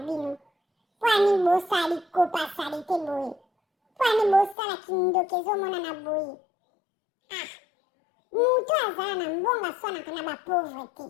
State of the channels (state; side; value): drops out; right; at 4.5 s